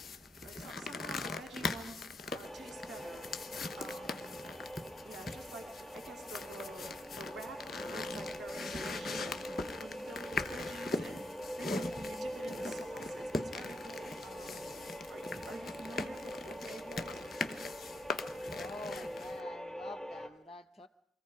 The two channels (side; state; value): both; normal; correlation 0.80